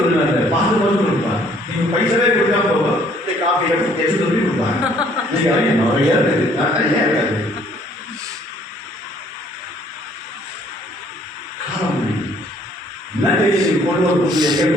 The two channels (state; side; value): normal; both; correlation 0.61